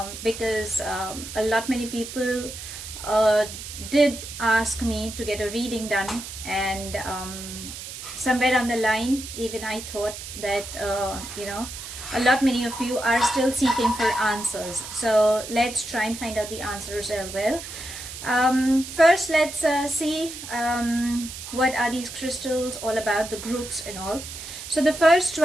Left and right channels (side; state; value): right; noise; hiss, 10 dB below the sound